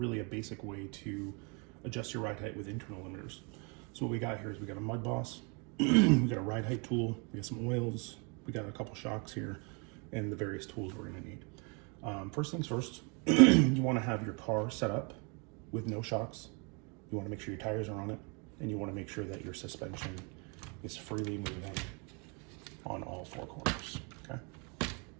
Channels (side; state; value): left; quieter; 33.3 dB